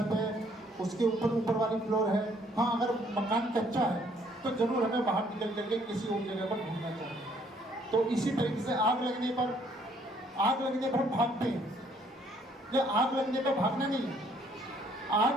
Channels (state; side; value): normal; both; correlation 0.64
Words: है, उसके ऊपर वाली फ्लोर है। हाँ, अगर मकान कच्चा है तो जरूर हमें बाहर निकल करके किसी और जगह पर ढूंढना चाहिए। तो इसी तरीके से आग लगने पर हम भागते हैं, या आग लगने पर भागना नहीं है,